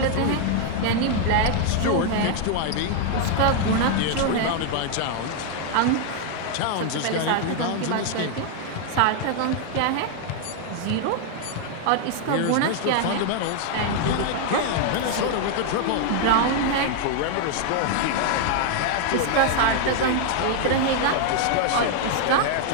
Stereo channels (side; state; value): both; different; correlation 0.00